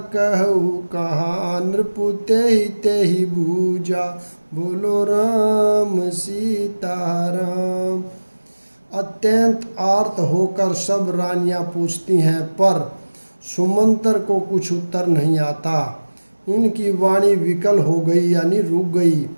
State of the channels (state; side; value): inverted; both; correlation -1.00